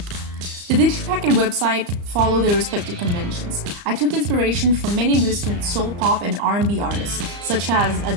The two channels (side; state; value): left; late; 34 ms